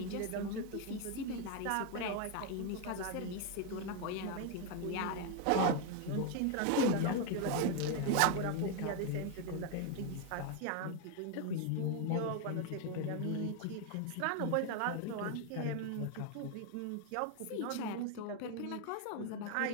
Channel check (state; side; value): different; both; correlation 0.01